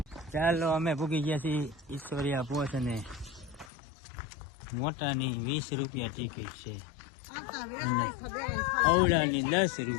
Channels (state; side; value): drops out; right; at 3.7 s